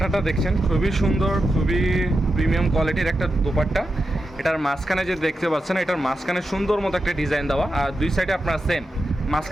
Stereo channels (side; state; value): both; normal; correlation 0.89